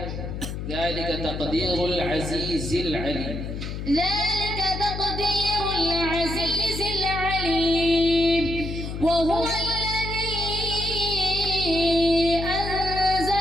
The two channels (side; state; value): left; noise; hum, 6 dB below the sound